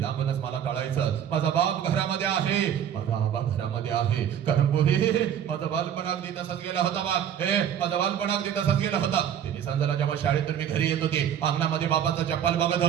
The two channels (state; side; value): quieter; left; 9.4 dB